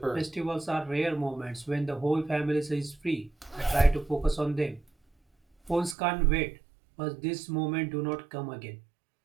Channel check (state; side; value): drops out; left; at 6.0 s